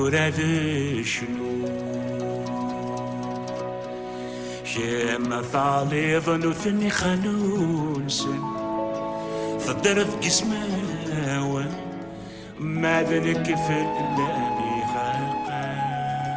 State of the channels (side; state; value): left; noise; hum, 29 dB below the sound